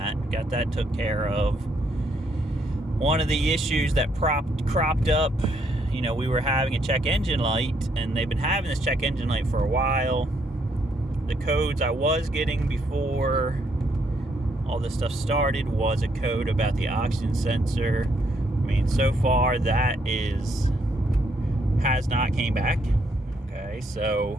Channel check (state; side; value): normal; both; correlation 0.72